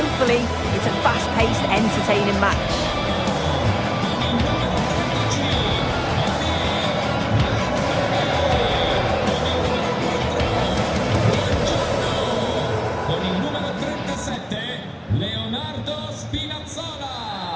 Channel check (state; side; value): identical; both; correlation 1.00